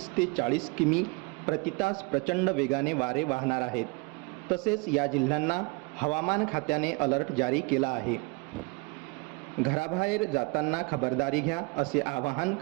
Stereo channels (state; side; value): quieter; left; 28.7 dB